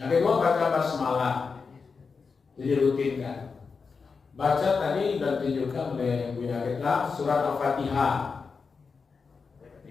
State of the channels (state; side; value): quieter; right; 5.0 dB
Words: kedua, baca basmalah. Itu dirutinkan. Baca tadi dan tunjukkan oleh Buya kita surat Al-Fatihah,